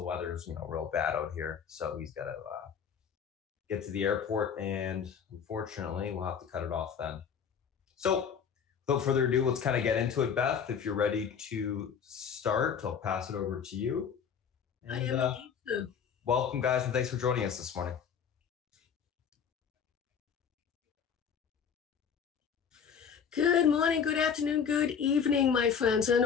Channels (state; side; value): quieter; right; 7.1 dB